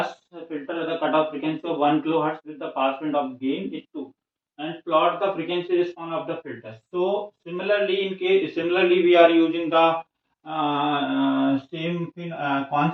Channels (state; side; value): identical; both; correlation 1.00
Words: filter with a cutoff frequency of 1 kilohertz with the pass band of gain is 2, and plot the frequency response of the filter. So similarly we are using the same